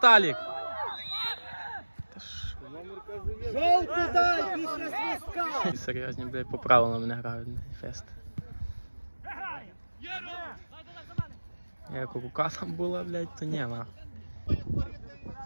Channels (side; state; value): both; inverted; correlation -1.00